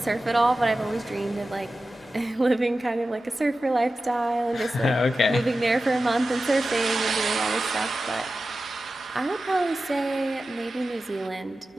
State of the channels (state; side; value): normal; both; correlation 0.94